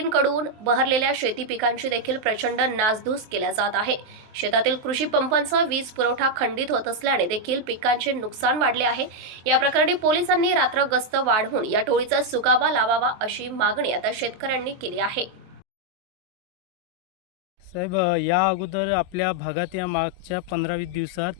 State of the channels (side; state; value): left; late; 23 ms